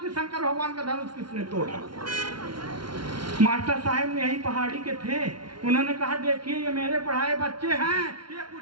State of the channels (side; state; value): left; late; 0.73 ms